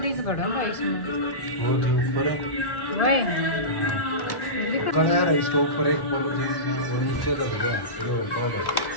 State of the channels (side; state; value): right; late; 1.3 ms